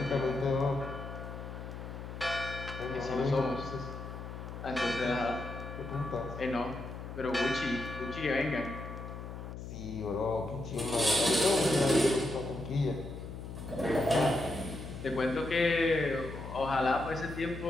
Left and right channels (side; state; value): left; noise; hum, 9 dB below the sound